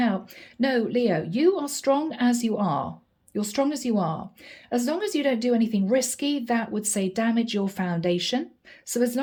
No, Leo, you are strong as you are. You're strong as you are. As long as you don't do anything risky, that would say damage your foundation. So as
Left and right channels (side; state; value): both; identical; correlation 1.00